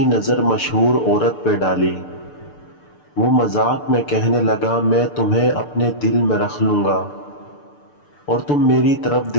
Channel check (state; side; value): late; right; 6.8 ms